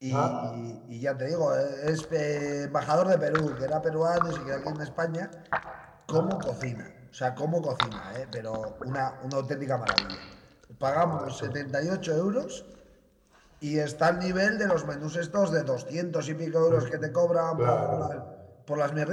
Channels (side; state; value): both; identical; correlation 1.00